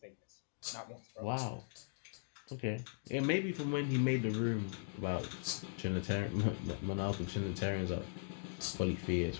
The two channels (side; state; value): right; silent; digital silence